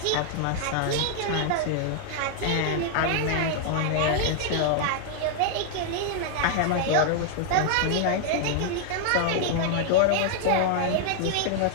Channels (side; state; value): both; different; correlation 0.00